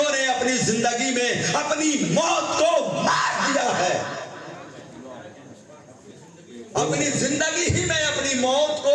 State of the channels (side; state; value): both; identical; correlation 1.00